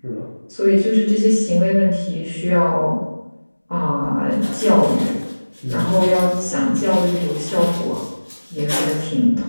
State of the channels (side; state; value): both; inverted; correlation -1.00